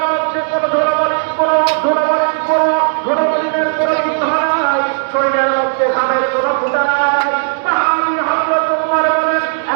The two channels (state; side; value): silent; left; digital silence